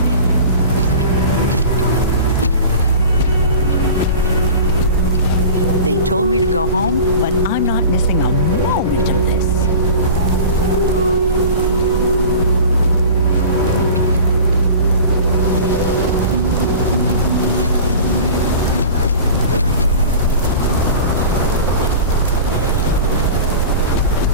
They told me to go home, but I'm not missing a moment of this.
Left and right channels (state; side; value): inverted; both; correlation -0.37